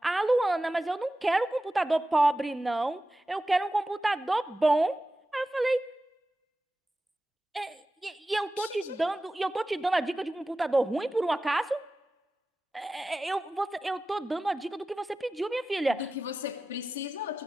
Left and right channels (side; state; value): both; normal; correlation 0.94